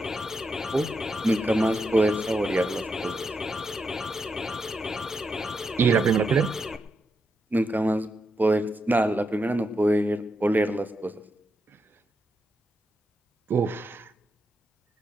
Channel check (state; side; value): normal; both; correlation 0.83